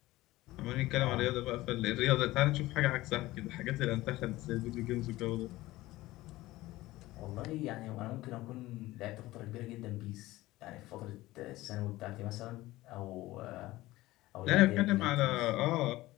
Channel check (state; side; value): quieter; right; 17.9 dB